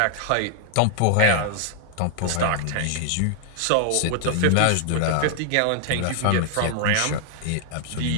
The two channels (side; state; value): both; different; correlation 0.00